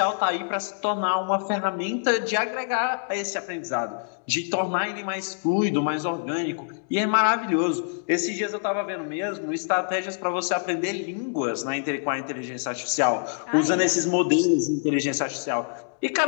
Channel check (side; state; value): right; silent; digital silence